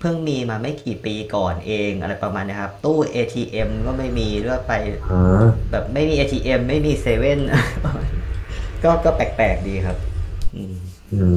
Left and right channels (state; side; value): identical; both; correlation 1.00